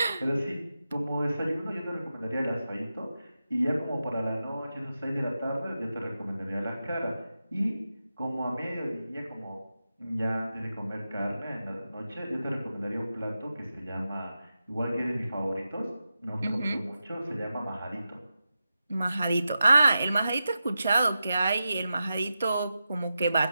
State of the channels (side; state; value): both; inverted; correlation -0.91